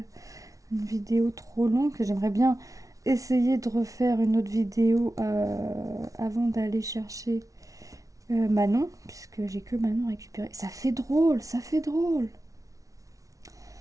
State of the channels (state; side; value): late; left; 0.17 ms